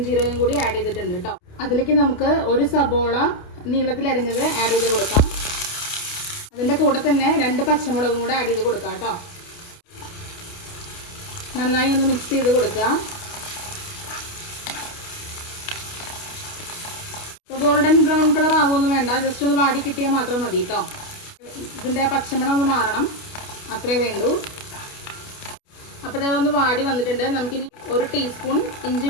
കൂടി ആഡ് ചെയ്തിട്ടുണ്ട് കേട്ടോ. അതിലേക്ക് നമുക്ക് 1 സബോള നീളത്തിൽ അരിഞ്ഞത് ആഡ് ചെയ്ത് കൊടുക്കാം. അതിന്റെ കൂടെ തന്നെ 2 പച്ചമുളകും കൂടെ ആഡ് ചെയ്ത് കൊടുക്കാം കേട്ടോ. നന്നായി ഒന്ന് മിക്സ് ചെയ്ത് കൊടുക്കുക. ഗോൾഡൻ ബ്രൗൺ കളർ ആവുമൊന്നും വേണ്ട, ജസ്റ്റ് ഒന്ന് വാടി കിട്ടിയാൽ മാത്രം മതി കേട്ടോ. ഇതിന്റെ പച്ചമണം ഒന്ന് മാറണം, അത്രേ വേണ്ടൂ. അപ്പോൾ ഇതൊന്ന് വാടി വന്നിട്ടുണ്ട്. നമുക്കിനി 1 ടീസ്പൂൺ ഇഞ്ചി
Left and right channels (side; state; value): right; late; 29 ms